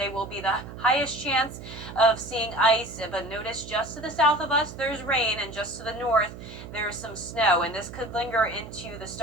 will be the highest chance of seeing ice, but notice just to the south of us there's rain, and just to the north there's some snow, and this could linger into the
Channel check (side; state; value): right; noise; hum, 13 dB below the sound